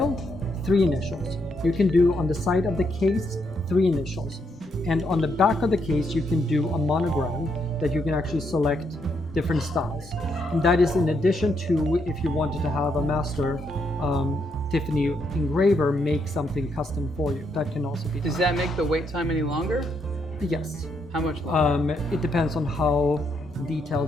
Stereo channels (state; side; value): normal; both; correlation 0.77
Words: 3 initials. You can do on the side of the case 3 initials, and on the back of the case you can do a monogram that you can actually select different styles. And that is in addition to if you wanted to have a master Tiffany engraver make something custom for you. That can also be done. Does that make the wait time any longer? Yes. How much longer? It depends on how